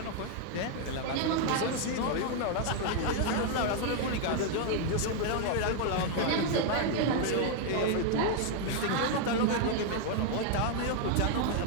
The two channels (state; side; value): different; both; correlation 0.00